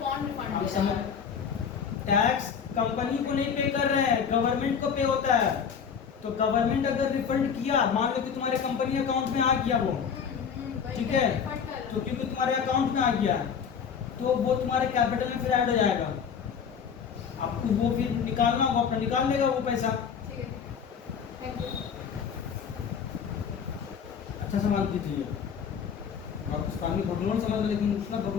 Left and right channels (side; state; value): right; quieter; 7.0 dB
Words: रिफंड अब दे समझ, रहा है। टैक्स कंपनी को नहीं पे कर रहे हैं, गवर्नमेंट को पे होता है। तो गवर्नमेंट अगर रिफंड किया, मान लो कि तुम्हारे कंपनी अकाउंट में आ गया वो, वही ठीक है, रिफंड कर रहा तो क्योंकि तुम्हारे अकाउंट में आ गया तो वो तुम्हारे कैपिटल में फिर ऐड हो जाएगा। आपको वो फिर निकालना होगा, अपना निकाल लेगा वो पैसा। ठीक है, थैंक यू। अच्छा सवाल कीजिए। आप पानी भगवान समझ, लेकिन उसका